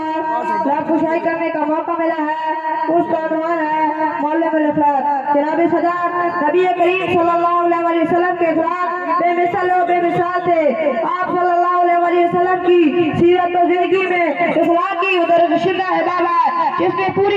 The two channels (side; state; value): both; identical; correlation 1.00